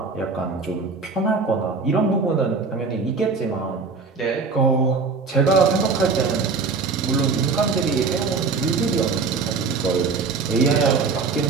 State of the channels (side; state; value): left; quieter; 4.6 dB